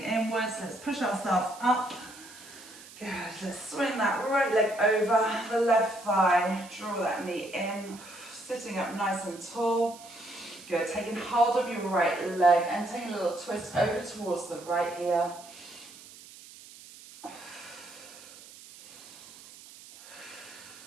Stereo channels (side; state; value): right; noise; hiss, 19 dB below the sound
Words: let's push ourselves up. Good, let's swing that right leg over the left thigh, draw that knee in, Sitting up nice and tall. Good, taking hold of your right leg and taking a little twist over towards the right here.